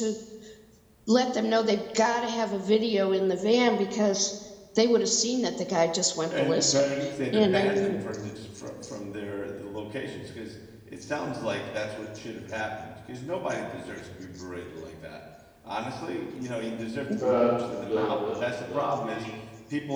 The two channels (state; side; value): identical; both; correlation 1.00